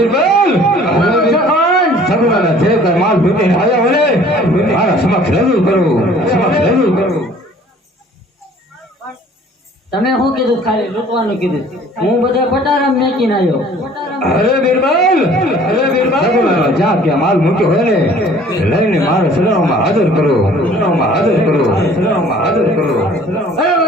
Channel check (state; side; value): normal; both; correlation 0.52